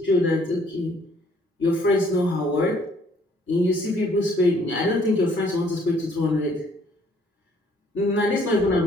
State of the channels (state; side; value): normal; both; correlation 0.62